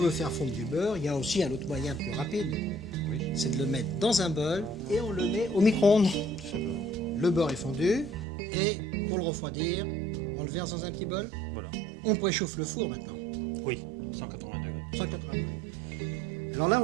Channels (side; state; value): left; drops out; at 8.2 s